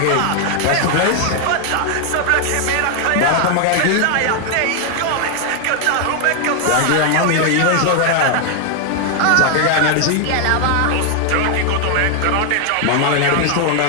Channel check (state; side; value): different; both; correlation 0.00